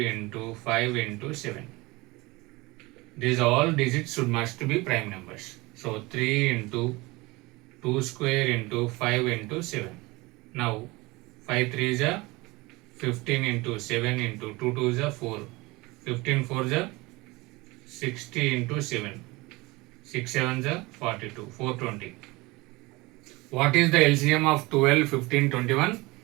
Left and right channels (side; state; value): left; quieter; 22.8 dB